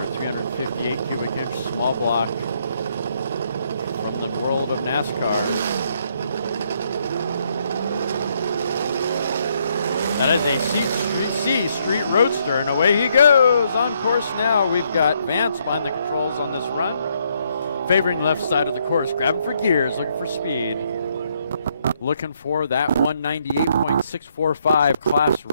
358 cubic inch small block from the world of NASCAR. That is a C Street Roadster, and away he goes. On course now, we've got Vance behind the controls on this run. Favoring left side of the course, grabbing for gears, looking for speed. Looking for that 198.645 class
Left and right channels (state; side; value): inverted; both; correlation -0.73